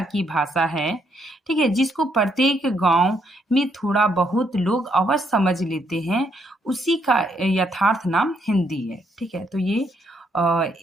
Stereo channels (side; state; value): both; normal; correlation 0.73